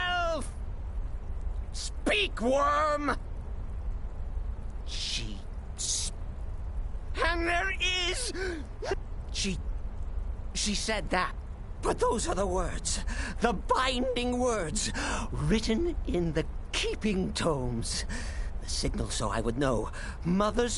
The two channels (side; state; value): both; identical; correlation 1.00